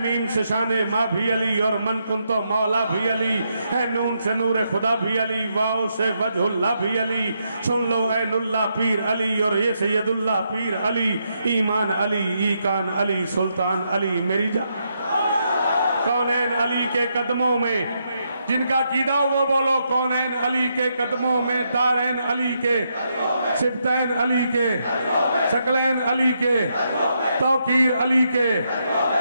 मीम से शाने माँ भी अली, और मन कुन तो मौला भी अली, है नून से नूर खुदा भी अली, वाओ से वजहुल्ला भी अली, सुन लो ऐनुल्ला पीर अली, और ये सैयदुल्ला पीर अली, ईमान अली, ईकान अली, सुल्तान अली, मेरी जान कौनैन अली के कदमों में जिनका कीदा वो बोलो कौनैन अली के कदमों में, दारैन अली के, सिबतैन अली के, शकलैन अली के, तौकीर अली के,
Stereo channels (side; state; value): both; inverted; correlation -0.80